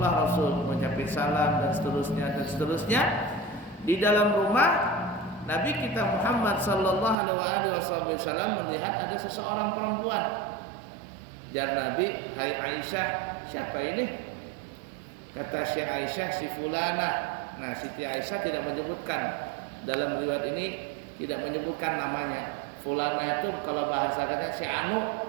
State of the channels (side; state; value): left; drops out; at 7.2 s